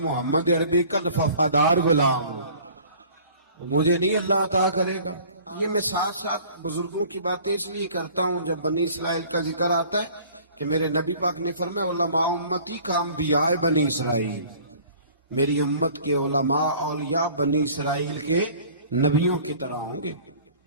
عربی کا وفادار غلام ہوں، مجھے نہیں اللہ عطا کرے گا. یہ میں ساتھ ساتھ بزرگوں کی باتیں اس لیے کرتا ہوں جب بنی اسرائیل کا ذکر آتا ہے کہ میرے نبی پاک نے فرمایا علماء امتی کا انبیاء بنی اسرائیل، میری امت کے علماء اولیاء بنی اسرائیل کے نبیوں کی طرح ہوں گے.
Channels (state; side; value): inverted; both; correlation -0.49